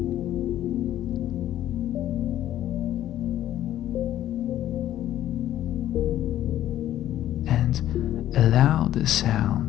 And allow the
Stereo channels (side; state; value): right; quieter; 12.6 dB